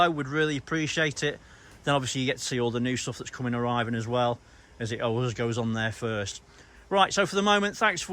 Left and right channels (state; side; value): identical; both; correlation 1.00